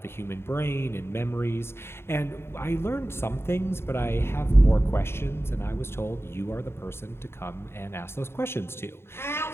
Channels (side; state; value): right; late; 0.12 ms